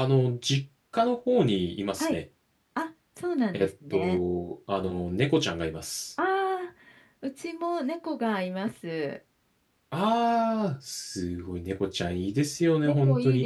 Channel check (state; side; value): identical; both; correlation 1.00